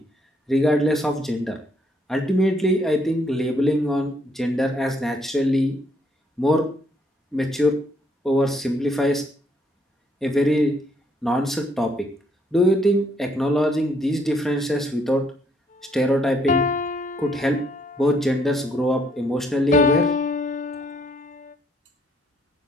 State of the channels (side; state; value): both; normal; correlation 0.69